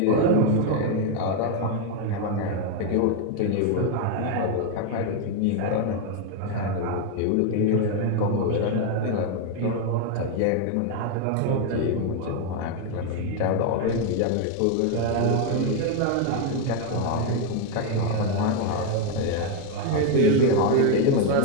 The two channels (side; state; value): both; different; correlation 0.01